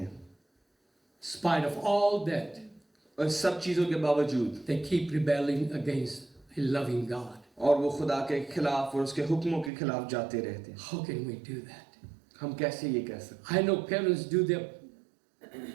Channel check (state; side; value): drops out; left; at 9.7 s